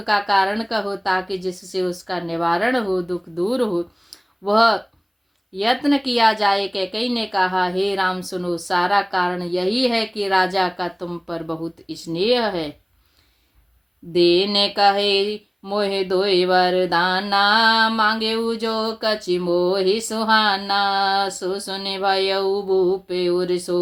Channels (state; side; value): identical; both; correlation 1.00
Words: कारण कहो ताकि जिससे उसका निवारण हो, दुख दूर हो, वह यत्न किया जाए। कैकेयी ने कहा, हे राम सुनो, सारा कारण यही है कि राजा का तुम पर बहुत स्नेह है। देने कहे मोहे दोय वरदाना मांगे जो कछि मोहि सुहाना। सो सुने भयउ भूपे उर